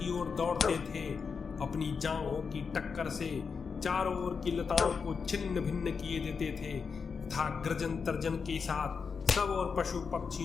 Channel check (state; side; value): quieter; right; 5.6 dB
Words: ओर दौड़ते थे। अपनी जांघों की टक्कर से चारों ओर की लताओं को छिन्न भिन्न किए देते थे तथा गर्जन तर्जन के साथ सब और पशु